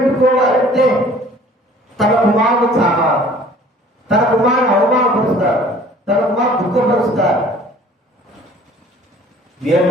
తన కుమారుడు చావాలి, తన కుమారుని అవమానపరుస్తారు, తన కుమారు దుఃఖపరుస్తారు.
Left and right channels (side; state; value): both; normal; correlation 0.51